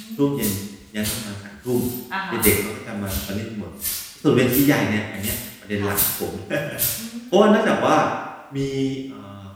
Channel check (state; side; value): identical; both; correlation 1.00